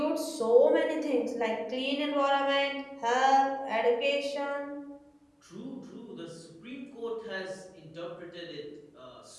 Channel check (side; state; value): both; identical; correlation 1.00